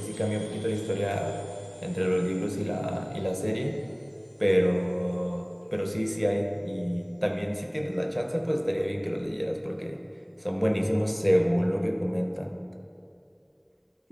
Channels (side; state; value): both; identical; correlation 1.00